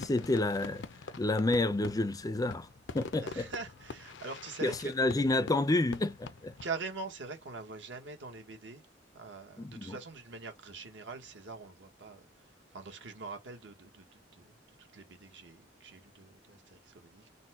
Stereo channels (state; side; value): normal; both; correlation 0.63